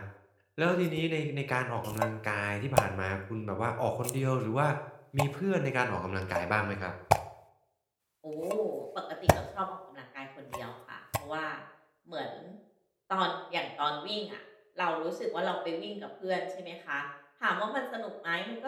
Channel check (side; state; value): both; identical; correlation 1.00